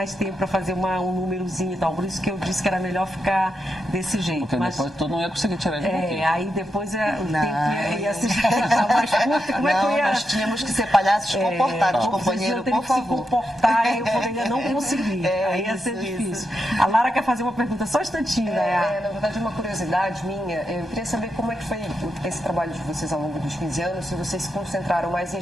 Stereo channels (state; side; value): normal; both; correlation 0.85